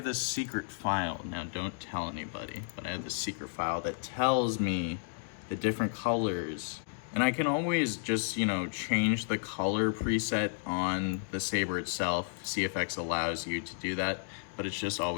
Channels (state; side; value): silent; right; digital silence